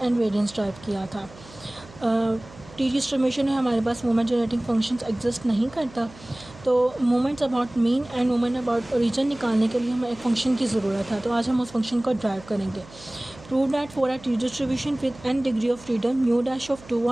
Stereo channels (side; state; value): right; noise; hum, 21 dB below the sound